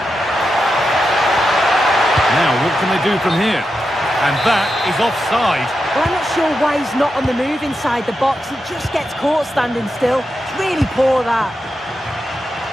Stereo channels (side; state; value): both; normal; correlation 0.88